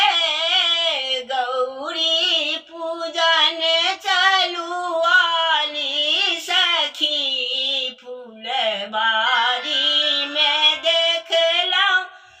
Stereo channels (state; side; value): identical; both; correlation 1.00